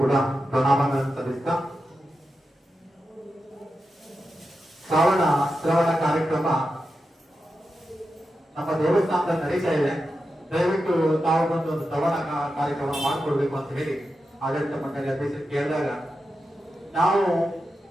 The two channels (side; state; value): both; normal; correlation 0.90